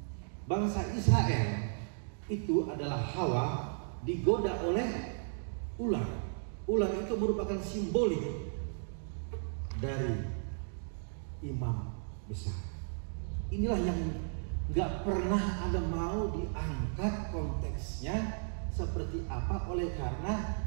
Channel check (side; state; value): left; silent; digital silence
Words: Bangsa Israel itu adalah Hawa digoda oleh ular. Ular itu merupakan simbolik dari imam besar. Inilah yang gak pernah ada mau diangkat konteksnya seperti apa, oleh karena